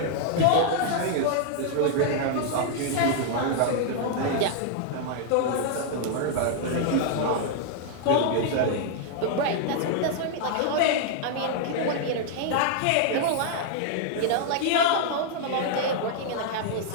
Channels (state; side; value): different; both; correlation -0.01